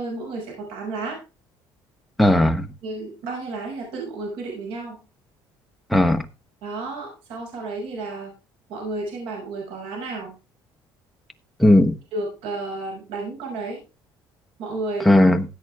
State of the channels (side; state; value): both; normal; correlation 0.86